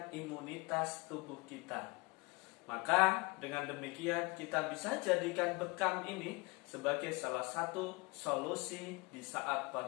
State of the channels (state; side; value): quieter; right; 26.6 dB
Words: imunitas tubuh kita. Maka dengan demikian kita bisa jadikan bekam ini sebagai salah satu solusi di saat